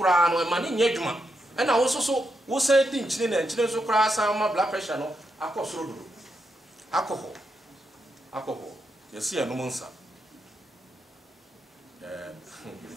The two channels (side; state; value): both; normal; correlation 0.83